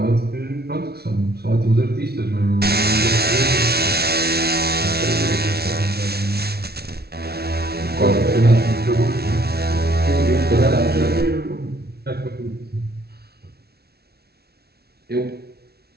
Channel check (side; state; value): left; late; 0.46 ms